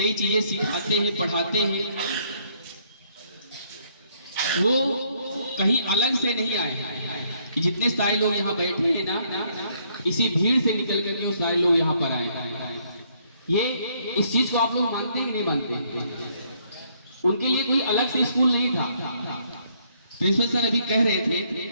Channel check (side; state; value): both; inverted; correlation -0.69